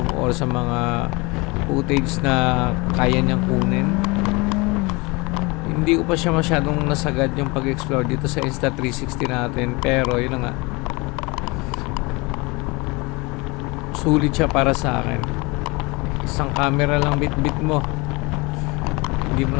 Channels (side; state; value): right; quieter; 26.2 dB